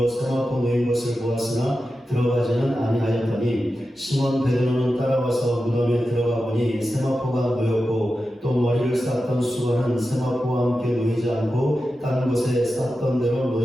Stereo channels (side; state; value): both; normal; correlation 0.91